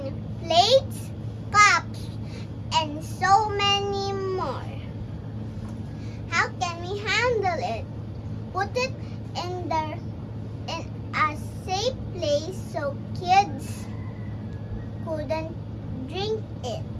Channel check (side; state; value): both; identical; correlation 1.00